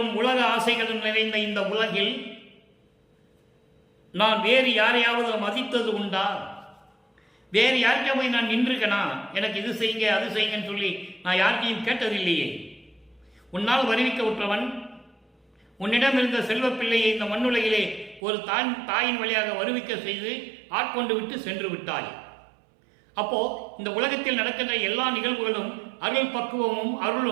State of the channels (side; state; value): left; drops out; at 18.2 s